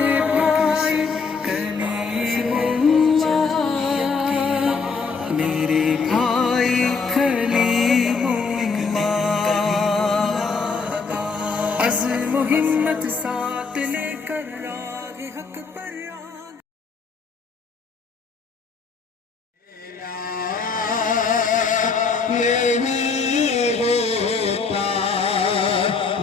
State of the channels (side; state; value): right; quieter; 4.8 dB